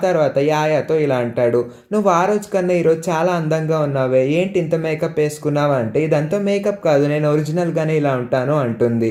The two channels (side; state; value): both; identical; correlation 1.00